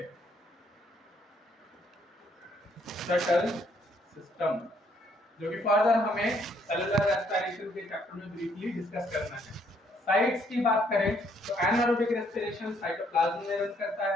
शटल सिस्टम, जो कि फर्दर हमें सेलुलर रेस्पिरेशन के चैप्टर में ब्रीफली डिस्कस करना है। साइट्स की बात करें तो एनारोबिक रेस्पिरेशन साइटोप्लाज्म में रन करता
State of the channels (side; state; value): both; normal; correlation 0.68